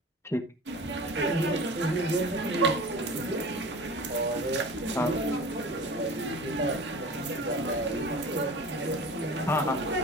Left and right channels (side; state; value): both; normal; correlation 0.38